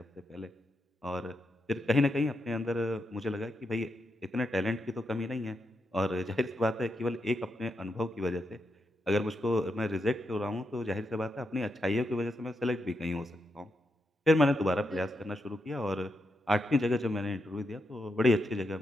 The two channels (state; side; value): normal; both; correlation 0.84